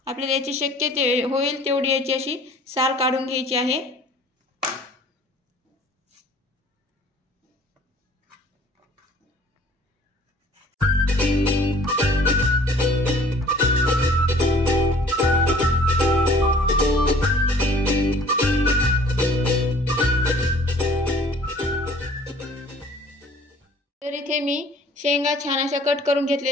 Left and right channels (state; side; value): normal; both; correlation 0.52